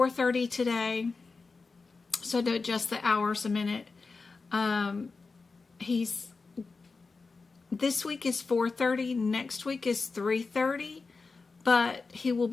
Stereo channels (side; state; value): right; quieter; 4.2 dB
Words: today, so I had to adjust the hours a minute. This week is 4:30, next week is 3:30, but he will